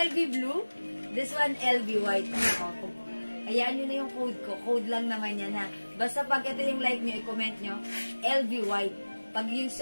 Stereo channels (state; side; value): inverted; both; correlation -1.00